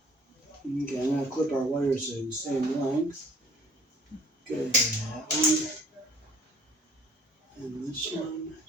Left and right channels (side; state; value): both; normal; correlation 0.52